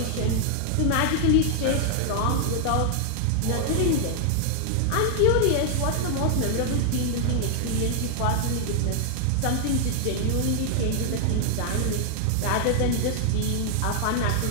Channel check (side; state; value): both; different; correlation 0.00